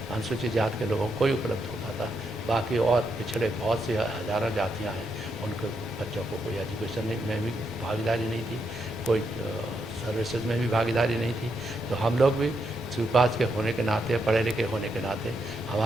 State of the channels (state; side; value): normal; both; correlation 0.80